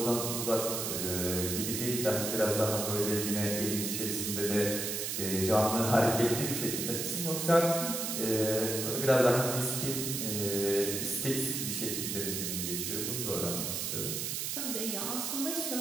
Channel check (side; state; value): right; noise; hiss, 2 dB below the sound